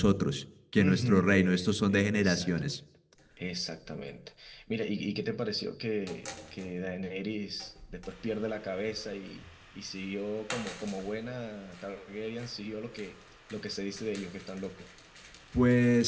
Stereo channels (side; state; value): both; identical; correlation 1.00